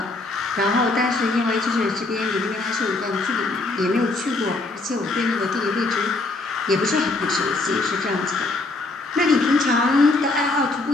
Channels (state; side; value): quieter; right; 3.2 dB